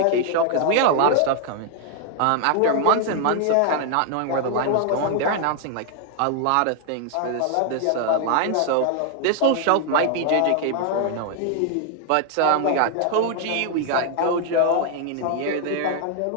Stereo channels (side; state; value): both; different; correlation 0.00